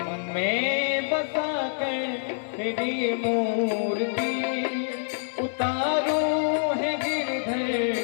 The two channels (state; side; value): silent; right; 61 dB below the other